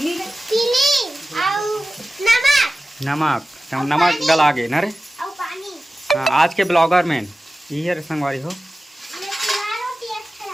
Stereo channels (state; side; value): normal; both; correlation 0.95